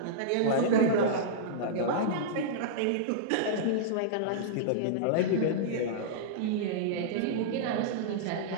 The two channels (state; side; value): different; both; correlation -0.03